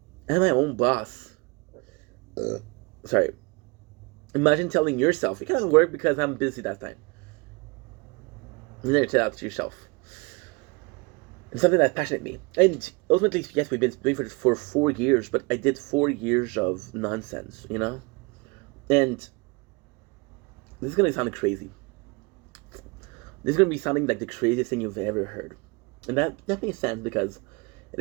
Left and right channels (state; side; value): quieter; left; 28.5 dB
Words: I'm my own boss. Sorry. Imagine telling yourself, you can't work because I'm busy that time. You never tell that to yourself. It's something that passionate me. And ultimately, yes, we've been doing this for 4 years, but I did 4 years of nonsense, you know? And this is going to sound crazy. This is going to be sounding like the craziest thing you've ever heard. And that makes sense because it